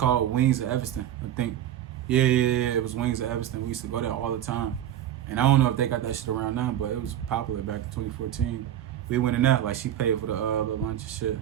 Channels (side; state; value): left; quieter; 11.3 dB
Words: Wings of Evanston, I think. Yeah. It was Wings of Evanston. We used to go there all the time. And I don't know if they got that shit around now, but it was popular back in 2014. We went in there, like, she paid for the lunch and shit.